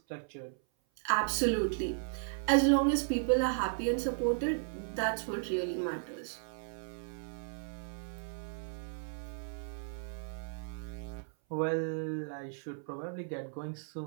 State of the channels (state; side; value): silent; left; 54 dB below the other